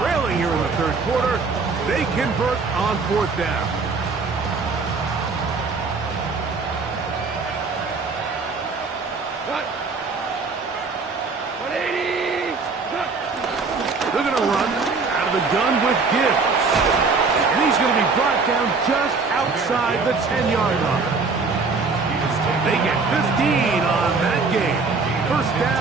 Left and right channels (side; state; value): left; quieter; 4.4 dB